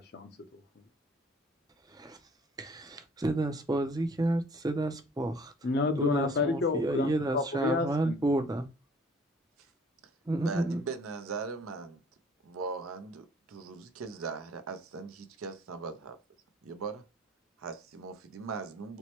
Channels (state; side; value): normal; both; correlation 0.55